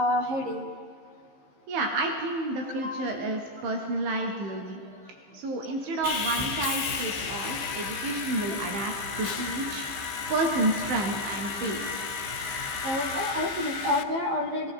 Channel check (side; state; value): left; late; 15 ms